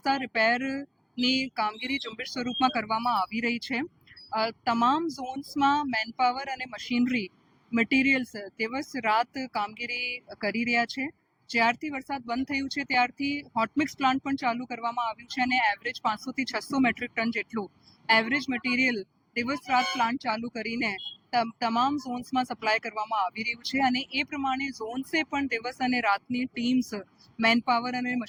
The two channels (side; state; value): both; identical; correlation 1.00